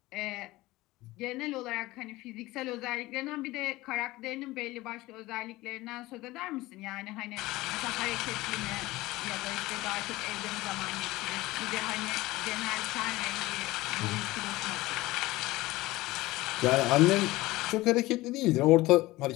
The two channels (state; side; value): quieter; right; 19.0 dB